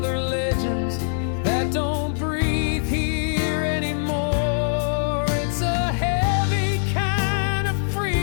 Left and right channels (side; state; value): right; silent; digital silence